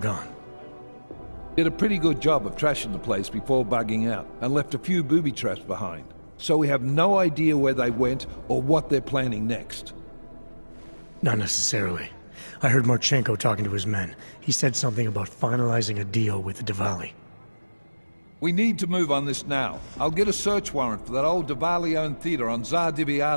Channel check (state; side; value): inverted; both; correlation -1.00